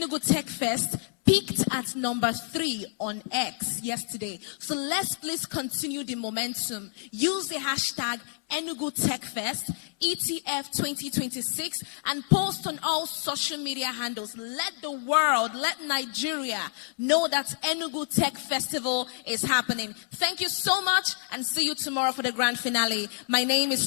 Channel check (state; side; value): silent; right; 59 dB below the other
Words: Tech Fest peaked at number 3 on X yesterday. So let's please continue the momentum. Use the hashtag Enugu Tech Fest, ETF 2026, and post on all social media handles. Let the world, let Nigeria know that Enugu Tech Festival is happening. Thank you so much, and see you tomorrow for the grand finale. My name is